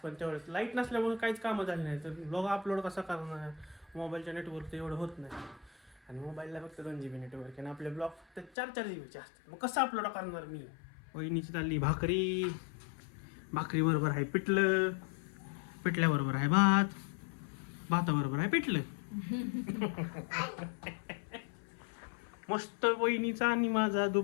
तेवढंच. लाईट नसल्यामुळे काहीच कामं झाली नाही. तर ब्लॉग अपलोड कसं करणार? मोबाईलच्या नेटवर्क तर एवढं होत नाही, आणि मोबाईलला फक्त 2 GB नेटवर्क, आणि आपले ब्लॉग तर 4-4 GBचे असतात. मग कसं अपलोड करणार मी? वहिनीची चालली भाकरी. भाकरी बरोबर आहे पिठलं, पिठल्याबरोबर आहे भात, भाताबरोबर आहे पिठलं. मस्त वहिनीचा आणि माझा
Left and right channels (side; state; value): right; drops out; at 8.5 s